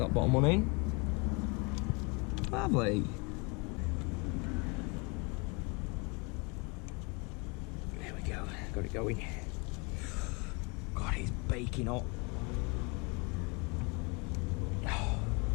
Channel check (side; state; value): right; quieter; 30.2 dB